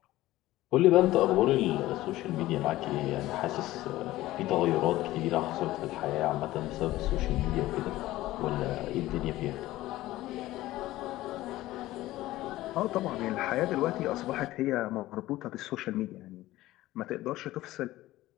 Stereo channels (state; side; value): quieter; right; 16.5 dB